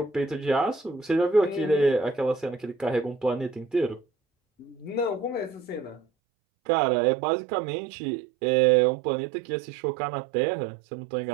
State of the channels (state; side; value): drops out; left; at 6.1 s